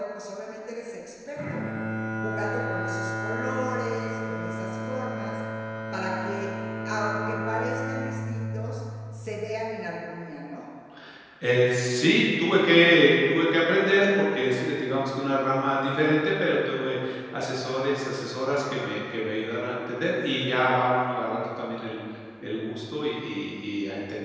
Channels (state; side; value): identical; both; correlation 1.00